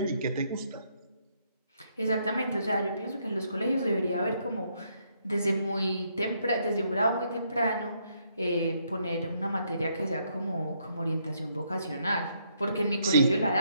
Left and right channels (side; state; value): both; inverted; correlation -0.73